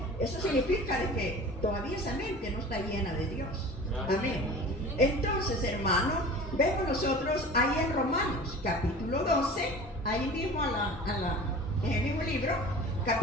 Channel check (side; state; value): both; normal; correlation 0.40